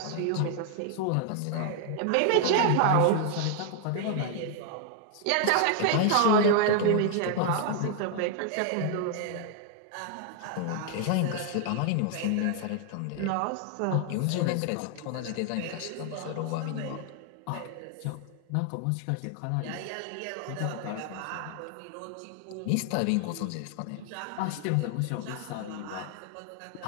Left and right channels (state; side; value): different; both; correlation 0.00